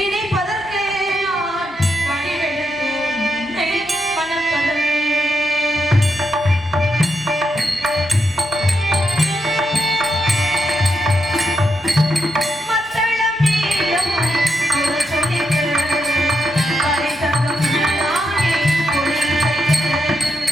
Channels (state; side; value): normal; both; correlation 0.82